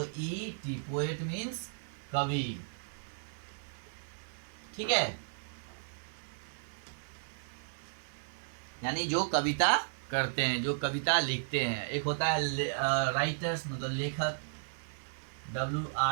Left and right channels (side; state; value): left; silent; 55 dB below the other